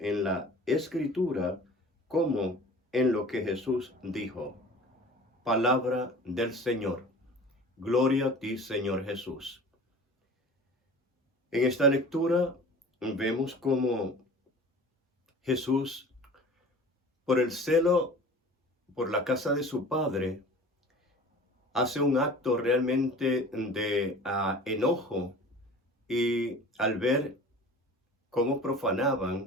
la Escritura como en lo que Jesús dijo. Palabra del Señor. Gloria a ti, Señor Jesús. En esta lectura vemos cómo Jesús, por el celo por la casa de su Padre, hace un acto realmente de enojo, y al ver cómo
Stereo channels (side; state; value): both; normal; correlation 0.42